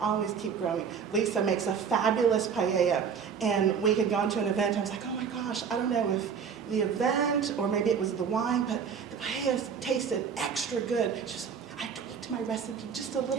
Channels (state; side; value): quieter; left; 6.8 dB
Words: Always keep growing. Lisa makes a fabulous paella, and we had gone to an event. I was like, oh my gosh, I don't know if the event or maybe it was the wine, but the paella tasted extra good. She was like, I tweaked my recipe just a